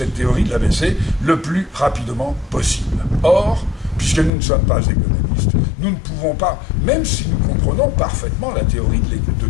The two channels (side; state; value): right; drops out; at 4.3 s